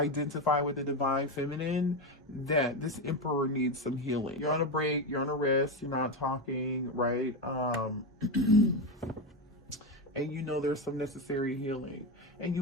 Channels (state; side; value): normal; both; correlation 0.13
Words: with the Divine Feminine, that this Emperor needs some healing. You're on a break. You're on a rest. You're not talking, right? And you know there's some necessary healing. And